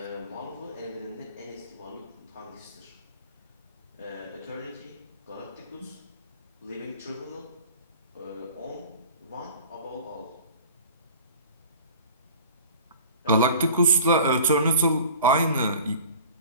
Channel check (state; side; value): inverted; both; correlation -0.43